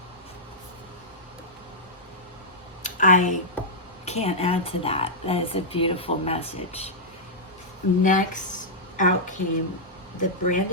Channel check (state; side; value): normal; both; correlation -0.08